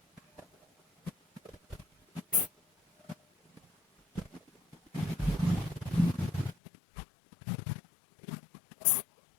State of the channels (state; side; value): drops out; right; at 6.6 s